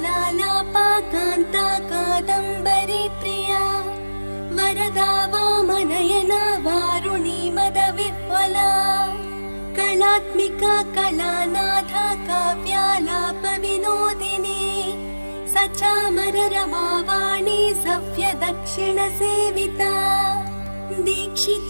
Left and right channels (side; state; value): both; inverted; correlation -1.00